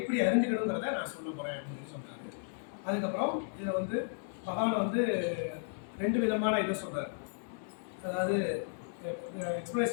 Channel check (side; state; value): right; silent; 55 dB below the other